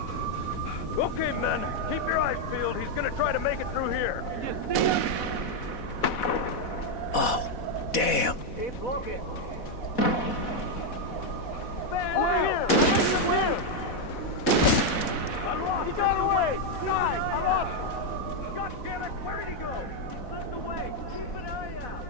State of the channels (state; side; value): late; right; 4.1 ms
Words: Okay, men. Keep your eyes peeled. He's gonna try to make it through here. Can you see him? Oh, damn. Keep looking. Over here! I'm lost. He got away. Guys, I'm lost. God damn it. Where did he go? He slipped away. Keep an eye out.